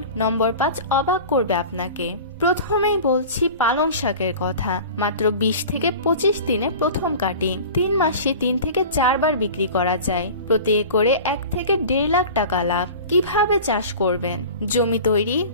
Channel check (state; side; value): inverted; both; correlation -0.37